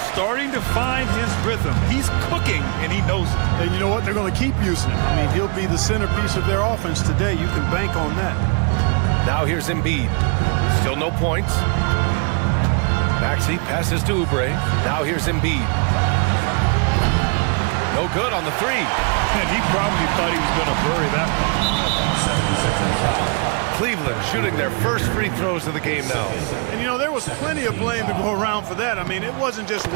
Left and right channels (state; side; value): quieter; left; 36.3 dB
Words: Starting to find his rhythm. He's cooking, and he knows it. And you know what? They're going to keep using him. I mean, he'll be the centerpiece of their offense today. You can bank on that. Now here's Embiid. Still no points. Maxey passes to Oubre. Now here's Embiid. No good on the three. And he probably thought he was going to bury that one. Cleveland shooting their first free throws of the game now. And, you know, there was plenty of blame to go around for that. I mean, it wasn't just